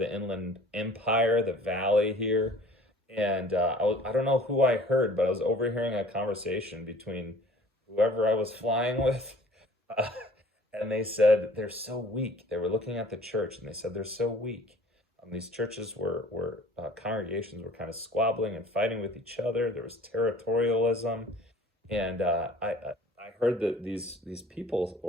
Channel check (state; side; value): normal; both; correlation 0.49